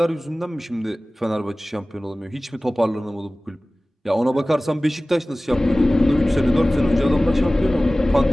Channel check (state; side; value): normal; both; correlation 0.98